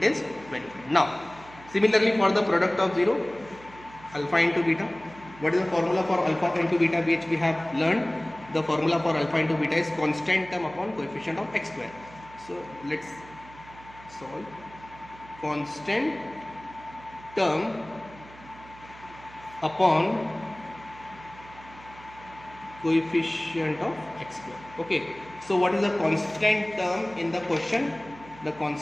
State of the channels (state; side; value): noise; right; hum, 20 dB below the sound